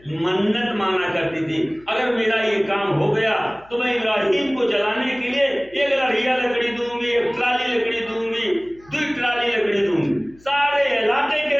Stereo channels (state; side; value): noise; left; hum, 27 dB below the sound